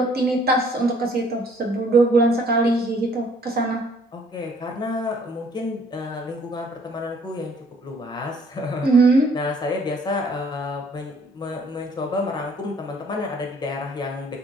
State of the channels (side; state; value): both; normal; correlation 0.60